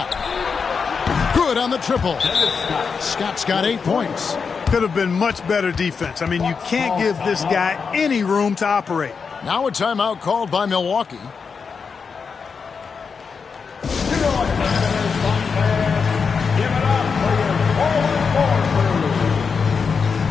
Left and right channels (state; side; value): quieter; right; 5.6 dB